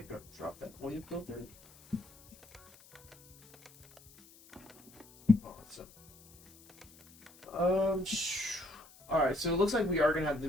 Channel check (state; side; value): noise; left; hiss, 24 dB below the sound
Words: go drop that oil filter. Alright, so it looks like we are gonna have to